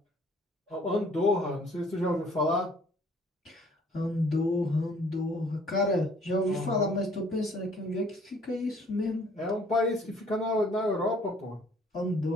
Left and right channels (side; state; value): both; normal; correlation 0.58